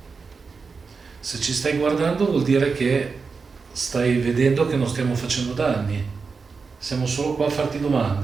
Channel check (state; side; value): quieter; left; 4.9 dB